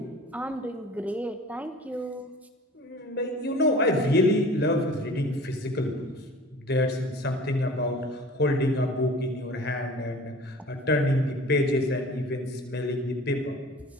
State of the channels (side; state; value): both; normal; correlation 0.44